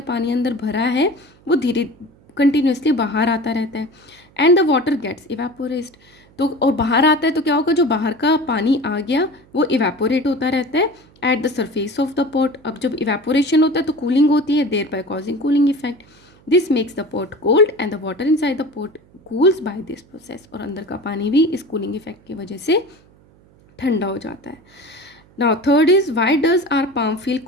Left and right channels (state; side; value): noise; right; hum, 29 dB below the sound